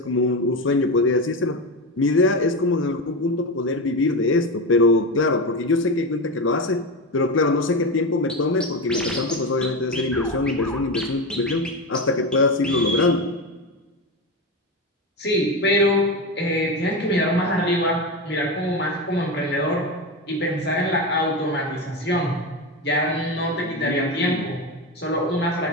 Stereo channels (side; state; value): both; normal; correlation 0.18